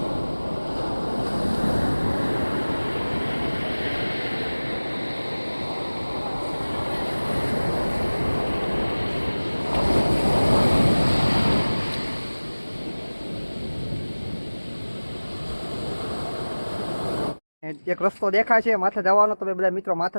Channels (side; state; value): both; inverted; correlation -1.00